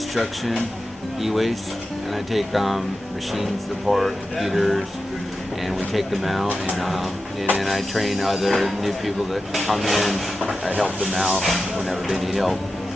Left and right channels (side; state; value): both; normal; correlation 0.92